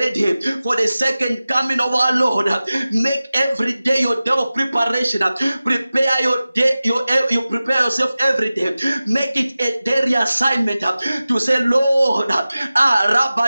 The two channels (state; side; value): inverted; both; correlation -0.96